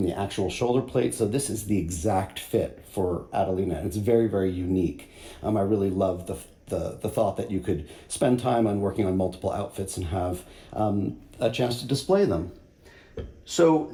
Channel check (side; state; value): both; identical; correlation 1.00